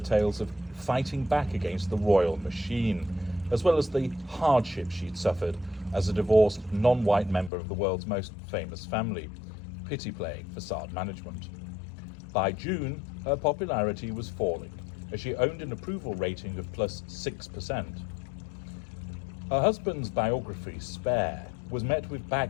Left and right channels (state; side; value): drops out; right; at 7.5 s